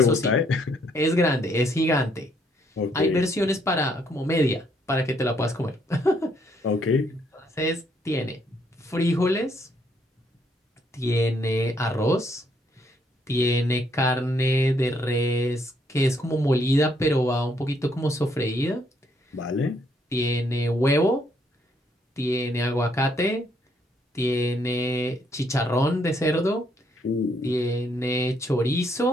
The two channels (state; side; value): normal; both; correlation 0.70